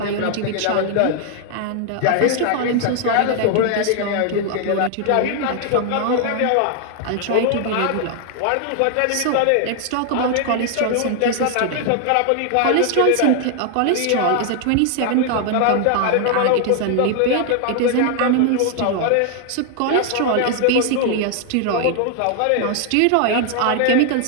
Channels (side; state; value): both; different; correlation 0.00